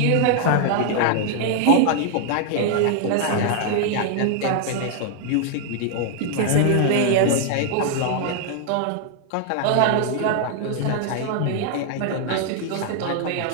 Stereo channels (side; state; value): both; different; correlation 0.00